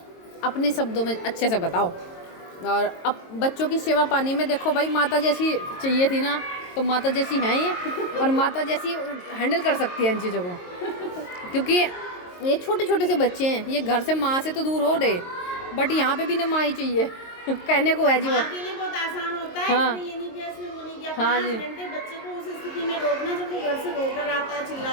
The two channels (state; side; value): late; right; 22 ms